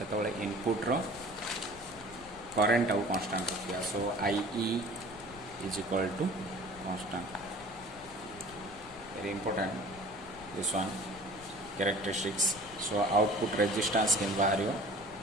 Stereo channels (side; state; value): left; noise; rumble, 19 dB below the sound